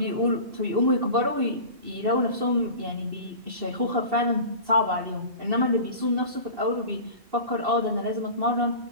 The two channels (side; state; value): left; late; 2.7 ms